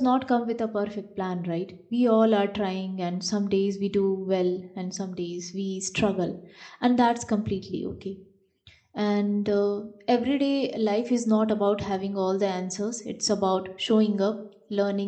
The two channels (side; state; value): both; identical; correlation 1.00